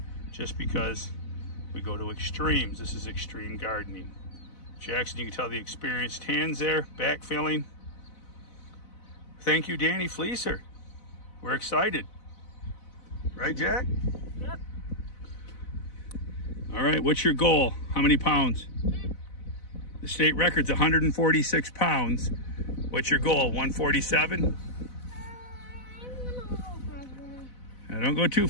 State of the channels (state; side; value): late; right; 4.0 ms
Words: just because we go to extremes. This is extreme gardening. Jackson, you can tell the experienced hands there, backfilling. Thank you, Danny Fleeser. We're excited. Right, Jack? Yep. All right, what's your goal? How many pounds? The state record's 146 pounds. What's your goal, 147? Now, don't go too